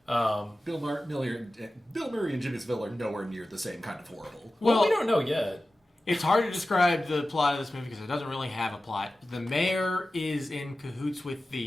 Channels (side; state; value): both; normal; correlation 0.95